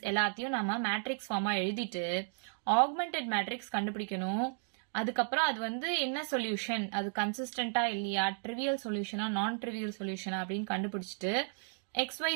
எல்லாத்தையும் நம்ம matrix form எழுதிட்டு augmented matrix கண்டுபிடிக்கணும். அதுக்கப்புறம் அது வந்து என்ன சொல்யூஷன், அது கன்சிஸ்டன்டா இல்லையா, ட்ரிவியல் சொல்யூஷனா நான் ட்ரிவியல் சொல்யூஷனா அப்படின்னு கண்டுபிடிச்சிட்டு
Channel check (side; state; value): left; silent; 55 dB below the other